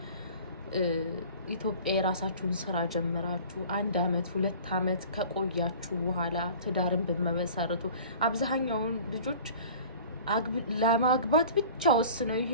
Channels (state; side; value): inverted; both; correlation -0.43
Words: ኢትዮጵያ የራሳችሁን ስራ ጀምራችሁ 1 አመት 2 አመት ከቆያችሁ በኋላ ትዳርን በመመሰረቱ አብዛኛውን ልጆች ለማግባት ብቻ ወስነው